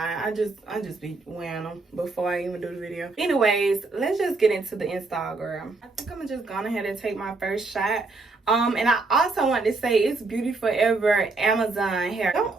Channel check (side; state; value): left; quieter; 3.6 dB